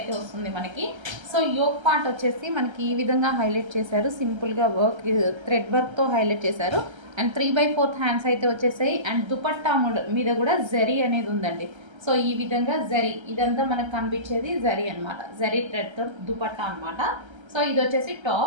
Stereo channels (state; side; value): late; left; 1.3 ms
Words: వస్తుంది మనకి. సో యోక్ పార్ట్ వచ్చేసి మనకి ఈ విధంగా హైలైట్ చేశారు. సింపుల్గా వర్క్ థ్రెడ్ వర్క్తో హైలైట్ చేశారు. అండ్ 3/4 హ్యాండ్స్ అయితే వచ్చేసాయి. అండ్ దుపట్టా మీద కూడా జరీ అనేది ఉందండి. సో ఈ విధంగా జరీ ఇదంతా మనకు కనిపించేది జరీ అనమాట. జరీ థ్రెడ్తో దుపట్టా అనమాట. సో ఇది వచ్చేసి